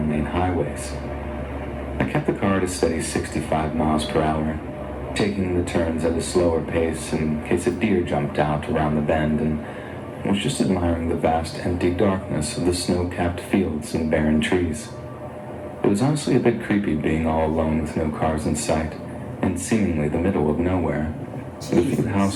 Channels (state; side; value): identical; both; correlation 1.00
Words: highways. I kept the car at a steady 65 miles per hour, taking the turns at a slower pace in case a deer jumped out around the bend, and was just admiring the vast empty darkness of the snow-capped fields and barren trees. It was honestly a bit creepy being all alone with no cars in sight, in seemingly the middle of nowhere. The few